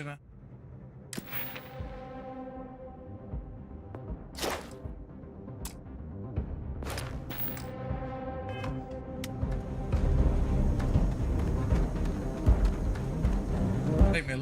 Take me a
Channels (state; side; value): identical; both; correlation 1.00